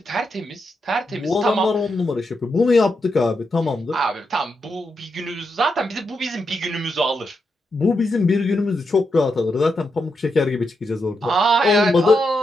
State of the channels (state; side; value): normal; both; correlation 0.84